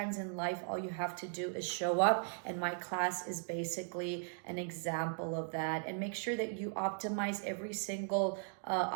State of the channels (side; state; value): left; silent; digital silence